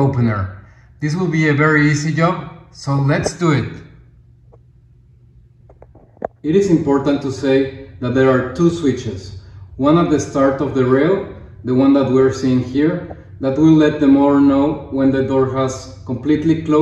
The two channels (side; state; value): both; identical; correlation 1.00